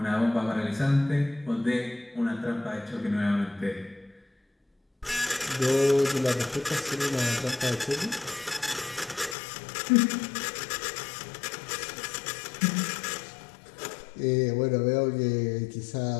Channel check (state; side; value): drops out; right; at 9.3 s